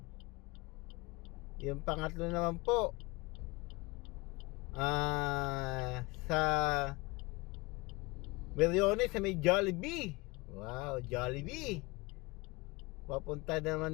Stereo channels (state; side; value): quieter; right; 24.5 dB